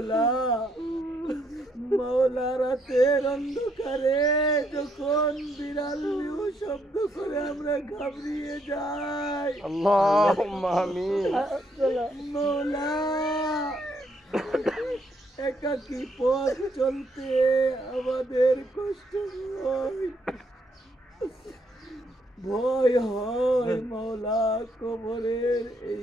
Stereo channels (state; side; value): normal; both; correlation 0.73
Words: মৌলা রাতের অন্ধকারে যখন বিড়াল নিউ শব্দ করে আমরা ঘাবড়িয়ে যাই, আল্লাহুম্মা আমিন। মৌলা একাকী পথ চলতে আমাদের কষ্ট হয়, ভয় হয় মৌলা। কবরের এই